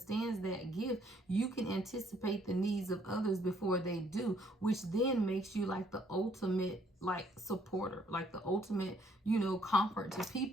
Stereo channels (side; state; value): both; normal; correlation 0.66